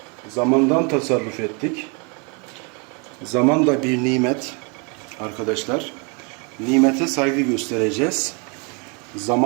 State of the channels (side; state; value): left; quieter; 34.0 dB